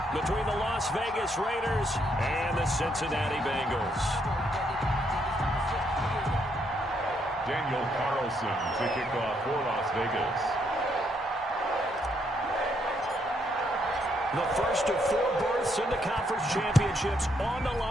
between the Las Vegas Raiders and the Cincinnati Bengals. Daniel Carlson to kick off for Las Vegas. The first of 4 berths in the conference championships on the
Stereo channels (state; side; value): normal; both; correlation 0.74